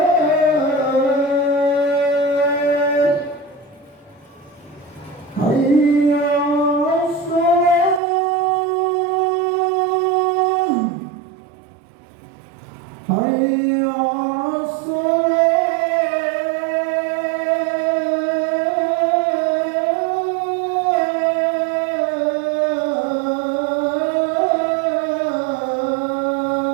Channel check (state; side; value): drops out; left; at 8.0 s